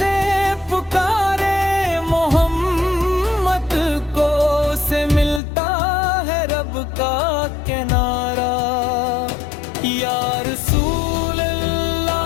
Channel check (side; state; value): right; drops out; at 5.4 s